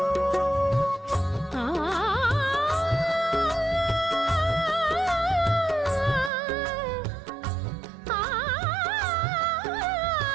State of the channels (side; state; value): left; drops out; at 6.3 s